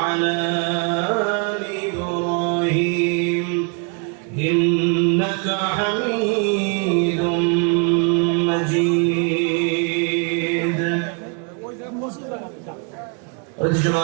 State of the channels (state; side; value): quieter; left; 35.7 dB